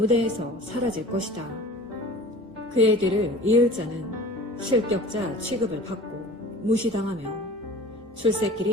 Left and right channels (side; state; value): both; normal; correlation 0.41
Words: 사라질 것이다. 그의 뒤를 이을 자는 실격자 취급을 받고 무시당하며